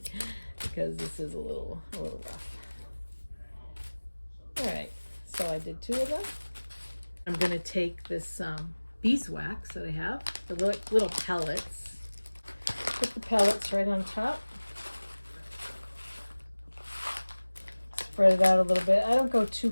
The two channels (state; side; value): inverted; both; correlation -1.00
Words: because this is a little rough. All right, so I did 2 of them. I'm going to take this beeswax that I have, the little pellets, put the pellets right on top. Spread it out a little bit. I don't go too